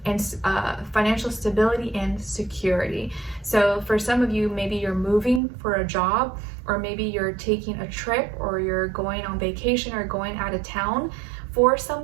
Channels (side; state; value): left; drops out; at 5.4 s